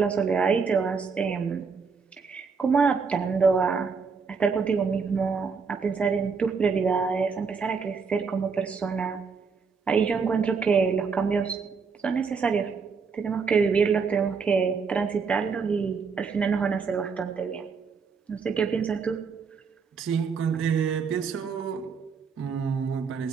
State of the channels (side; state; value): left; quieter; 5.4 dB